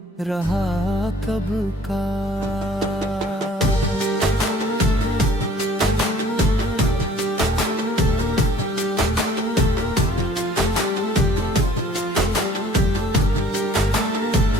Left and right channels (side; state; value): both; normal; correlation 0.54